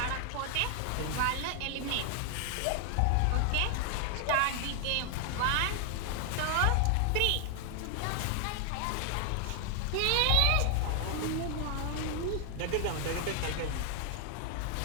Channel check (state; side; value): different; both; correlation 0.00